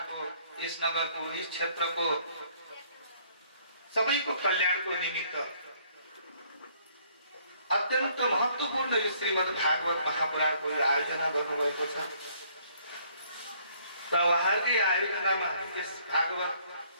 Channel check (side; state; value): both; inverted; correlation -0.63